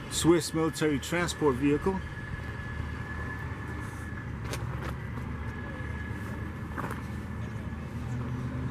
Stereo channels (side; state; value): both; identical; correlation 1.00